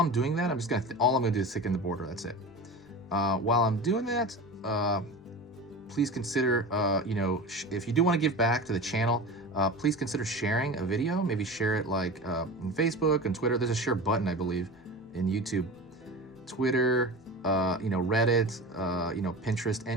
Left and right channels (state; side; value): normal; both; correlation 0.31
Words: doing that, I'm just gonna, all I'm gonna do is thicken the border, that's it. While I'm doing that, please consider, you know, if you do want to give back to the channel, please consider sharing a video. Maybe share it like on Facebook and Twitter. There's a share button, I believe, in YouTube, Twitter, you know, Reddit, you know, Pinterest,